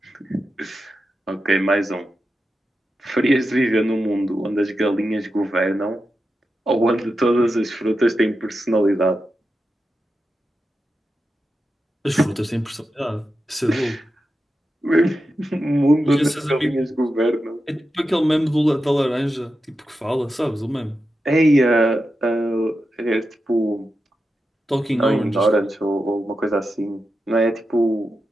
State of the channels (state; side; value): normal; both; correlation 0.90